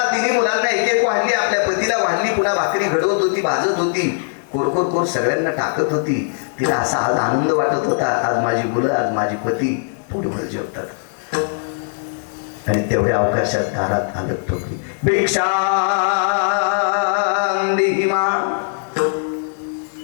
मुलांना एक एक वाढली. आपल्या पतीला वाढली. पुन्हा भाकरी घडवत होती, भाजत होती. कोर सगळ्यांना टाकत होती. तिला असा आज आनंद वाटत होता, आज माझी मुलं, आज माझी पती पोटभर जेवतात. आणि तेवढ्या अवकाशात दारात आलं ठोकली. भिक्षा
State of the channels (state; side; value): silent; right; digital silence